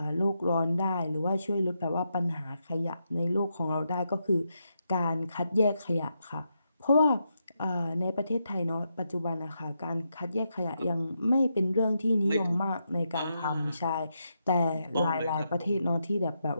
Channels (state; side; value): inverted; both; correlation -0.83